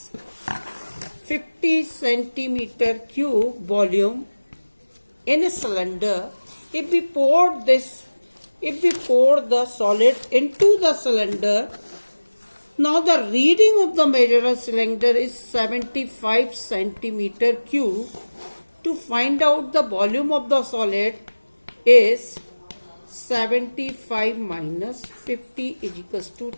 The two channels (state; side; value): inverted; both; correlation -1.00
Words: 50 centimeter cube volume in a cylinder, if we pour the solid into the cylinder, now the reading of the measurer cylinder is 75 centimeter cube. To find out the volume of the solid is 75 minus 50 is equals to